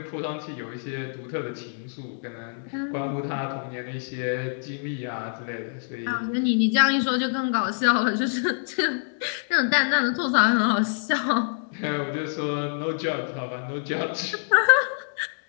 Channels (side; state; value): right; silent; 61 dB below the other